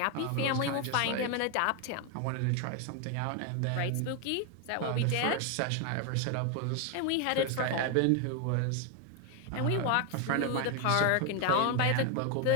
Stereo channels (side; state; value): both; different; correlation 0.01